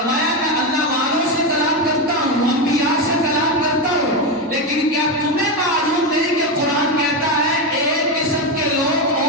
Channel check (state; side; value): normal; both; correlation 0.12